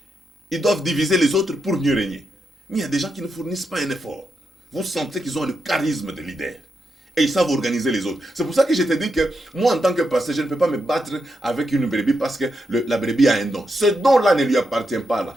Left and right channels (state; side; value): normal; both; correlation 0.84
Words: Ils doivent diviser les autres pour mieux régner. Mais il y a des gens qui ne fournissent pas un effort. Vous sentez qu'ils ont le charisme de leader. Et ils savent organiser les autres. C'est pour ça que je te dis que moi, en tant que pasteur, je ne peux pas me battre avec une brebis parce que la brebis a un don. Ce don-là ne lui appartient pas là.